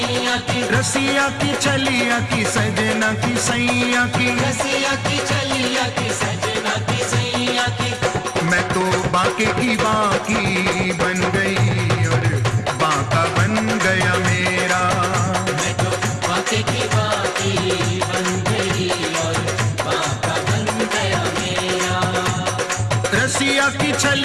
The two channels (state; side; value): identical; both; correlation 1.00